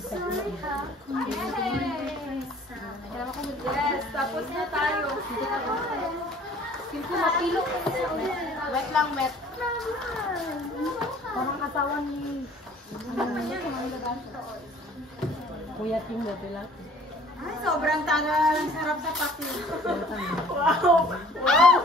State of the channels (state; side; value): normal; both; correlation 0.52